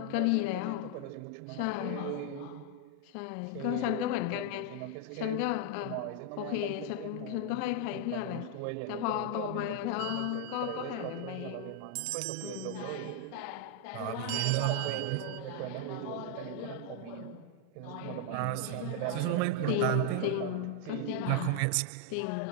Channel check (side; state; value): both; different; correlation 0.00